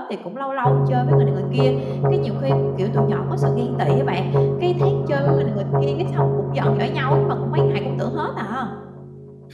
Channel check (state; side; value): identical; both; correlation 1.00